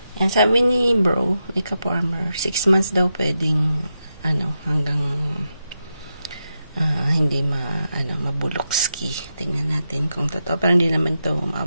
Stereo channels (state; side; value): inverted; both; correlation -0.87